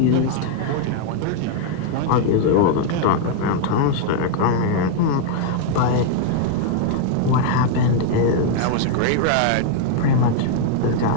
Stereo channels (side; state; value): both; different; correlation 0.00